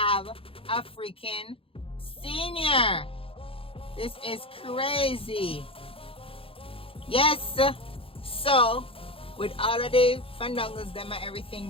a freaking senior. This is crazy. Yes. So with all of the fandangos them and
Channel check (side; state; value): right; late; 0.27 ms